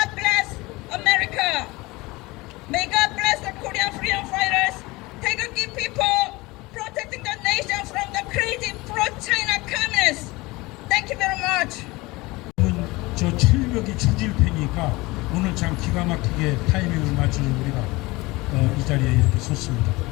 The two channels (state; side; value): quieter; right; 22.1 dB